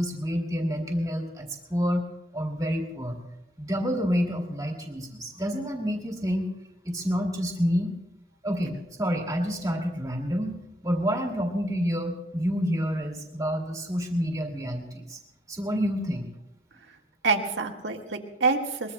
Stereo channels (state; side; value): normal; both; correlation 0.67